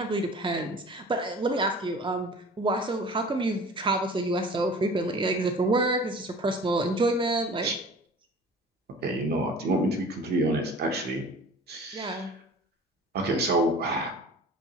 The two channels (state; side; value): normal; both; correlation 0.43